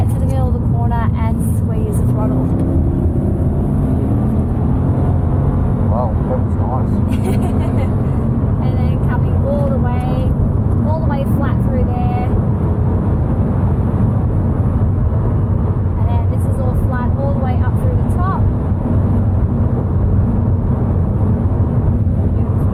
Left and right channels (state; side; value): identical; both; correlation 1.00